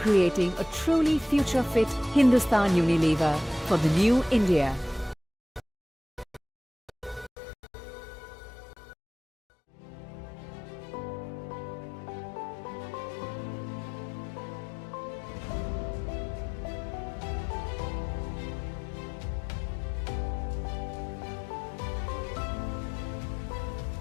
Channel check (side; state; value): right; drops out; at 7.3 s